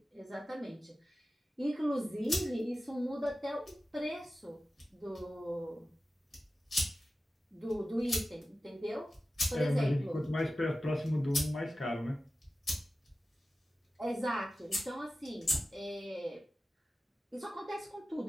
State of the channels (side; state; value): both; normal; correlation 0.94